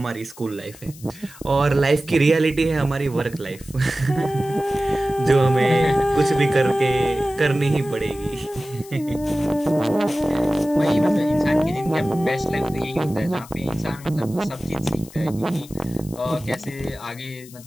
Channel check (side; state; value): left; noise; hiss, 20 dB below the sound